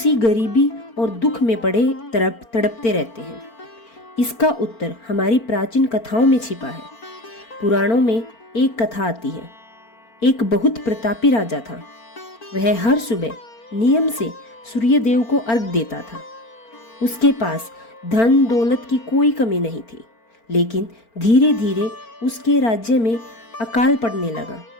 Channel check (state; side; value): late; right; 4.4 ms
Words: गरीबी और दुख में पड़े तड़पते रहते हैं। इसका उत्तर हमारी प्राचीन कथाओं में छिपा है। पुराणों में एक कथा आती है। एक बहुत प्रतापी राजा था। वह हर सुबह नियम से सूर्य देव को अर्घ देता था। उसके पास धन दौलत की कोई कमी नहीं थी, लेकिन धीरे धीरे उसके राज्य में अकाल पड़ने लगा,